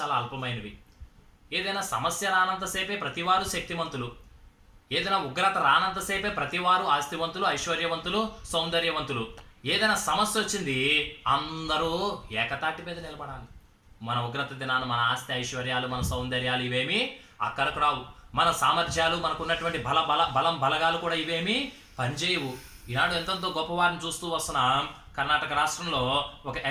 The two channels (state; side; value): identical; both; correlation 1.00